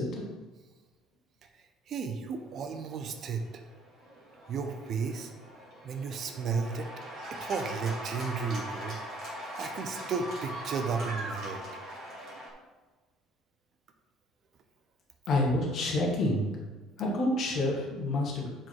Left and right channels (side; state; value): both; normal; correlation 0.58